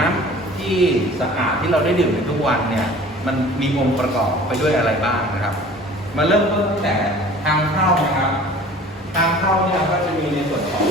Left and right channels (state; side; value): normal; both; correlation 0.46